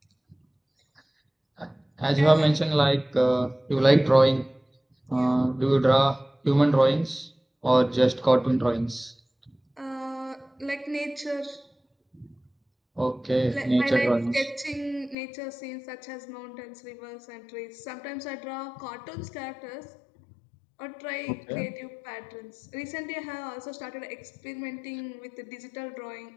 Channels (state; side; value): drops out; right; at 15.2 s